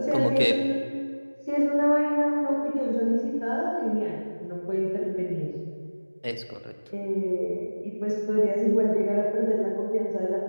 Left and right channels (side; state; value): both; inverted; correlation -1.00